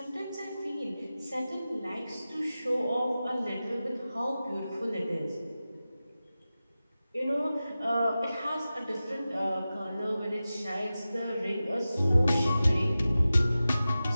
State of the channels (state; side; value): inverted; both; correlation -0.95